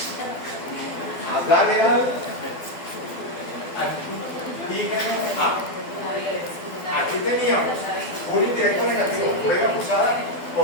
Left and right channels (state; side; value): late; right; 12 ms